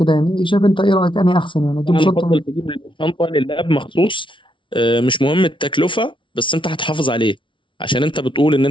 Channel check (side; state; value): right; late; 0.25 ms